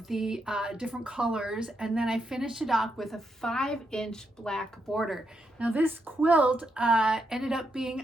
the different colors, and then I finished it off with a 5-inch black border. Now this quilt ended up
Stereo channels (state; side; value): normal; both; correlation 0.81